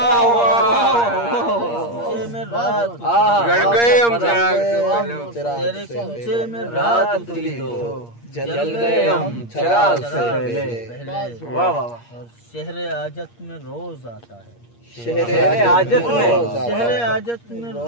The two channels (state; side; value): late; right; 8.5 ms